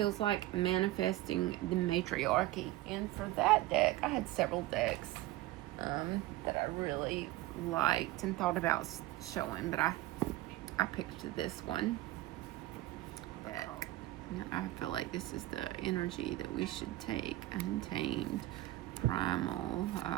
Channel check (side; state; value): left; quieter; 16.7 dB